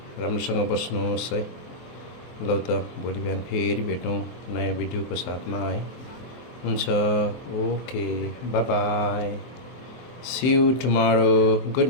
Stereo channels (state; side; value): late; right; 23 ms